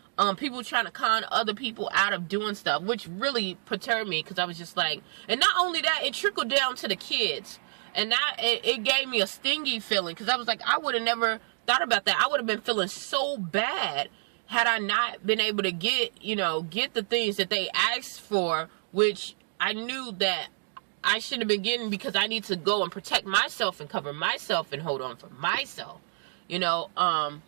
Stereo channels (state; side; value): silent; left; digital silence